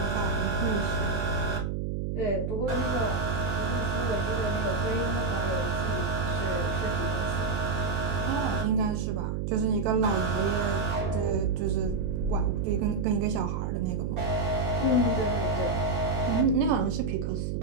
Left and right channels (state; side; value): noise; right; hum, 1 dB below the sound